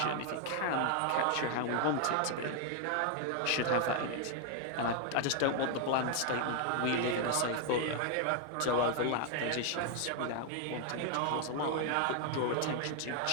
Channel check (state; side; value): different; both; correlation 0.00